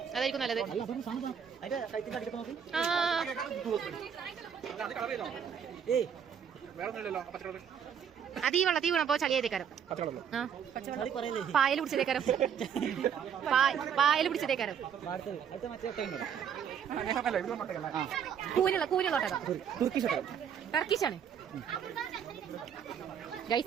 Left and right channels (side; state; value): left; quieter; 8.0 dB